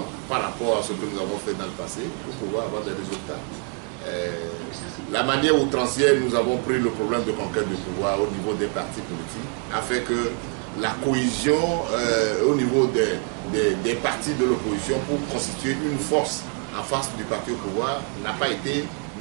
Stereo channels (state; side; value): quieter; left; 36.8 dB